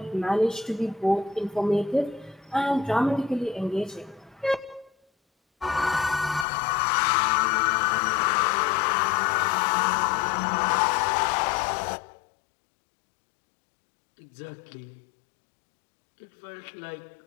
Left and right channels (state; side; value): drops out; right; at 6.5 s